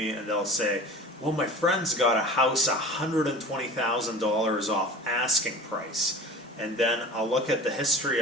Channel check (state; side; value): normal; both; correlation 0.38